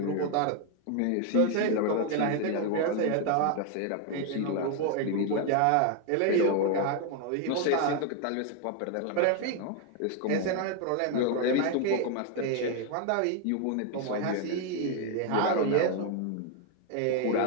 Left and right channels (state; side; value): different; both; correlation 0.01